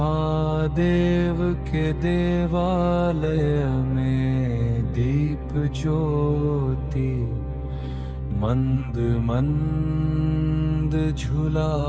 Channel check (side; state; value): both; identical; correlation 1.00